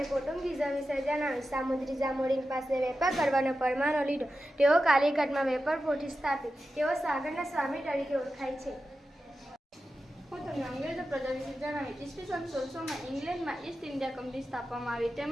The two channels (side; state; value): both; normal; correlation 0.92